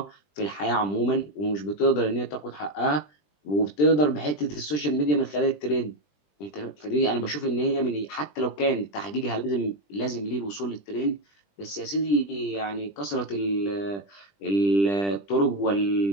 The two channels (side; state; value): right; late; 20 ms